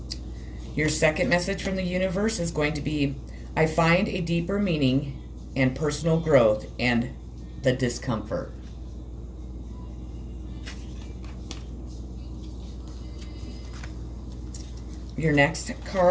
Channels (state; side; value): identical; both; correlation 1.00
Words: Your second message from the universe is going to be, I find a deeper meaning and personal growth and the discomfort. Your next